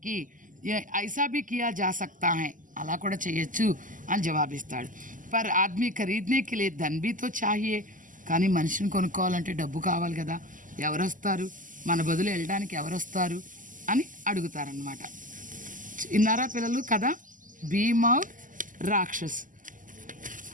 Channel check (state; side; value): late; left; 0.38 ms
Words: कि ये ऐसा भी किया जा सकता है, అలా కూడా చేయొచ్చు అని జవాబిస్తాడు. పర్ ఆద్మీ ఖరీదనే కే లియే ధన్ భీ తో చాహియే, కానీ మనిషిని కొనుక్కోవాలంటే డబ్బు కావాలి కదా, ఎవరు వస్తారు, మన బదులు వెళ్ళడానికి ఎవరు వస్తారు అని అడుగుతారనమాట. ఇన్నారా పిల్లలు కదా, భీమ్ ఔర్ రాక్షస్.